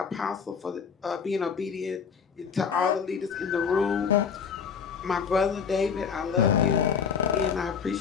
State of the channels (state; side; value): quieter; right; 6.5 dB